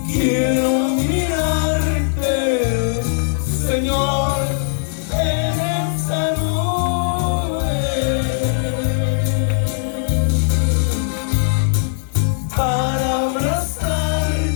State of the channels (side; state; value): right; silent; 67 dB below the other